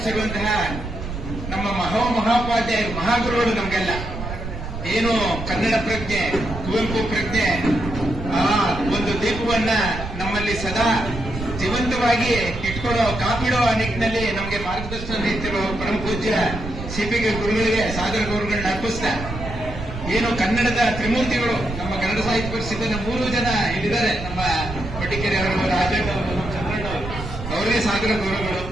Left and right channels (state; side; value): noise; right; rumble, 8 dB below the sound